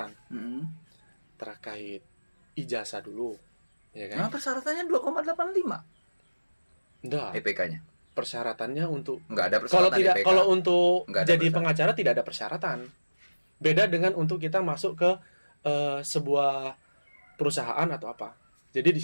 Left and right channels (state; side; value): inverted; both; correlation -1.00